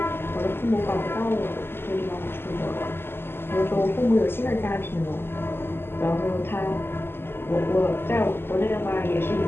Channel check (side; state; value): right; late; 0.11 ms